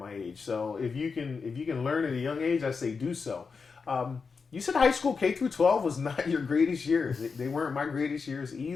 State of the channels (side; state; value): right; quieter; 5.1 dB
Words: age. So if you can learn at a young age, I say do so. You said high school K through 12 was not your greatest years. They weren't my greatest years